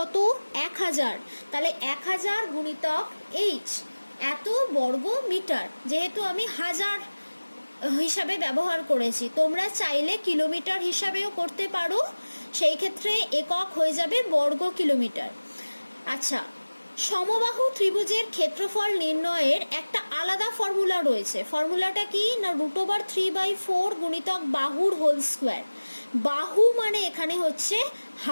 1000। তাহলে 1000 গুণিতক h, এত বর্গ মিটার। যেহেতু আমি হাজার হিসাবে ব্যবহার করেছি, তোমরা চাইলে কিলোমিটার হিসাবেও করতে পারো, সেই ক্ষেত্রে একক হয়ে যাবে বর্গ কিলোমিটার। আচ্ছা, সমবাহু ত্রিভুজের ক্ষেত্রফল নির্ণয়ের একটা আলাদা ফর্মুলা রয়েছে। ফর্মুলাটা কি? না √3/4 গুণিতক বাহুর হোল স্কোয়ার। বাহু মানে এখানে হচ্ছে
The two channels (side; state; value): both; inverted; correlation -1.00